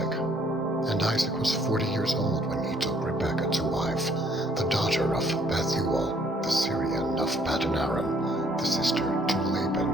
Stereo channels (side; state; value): both; normal; correlation 0.64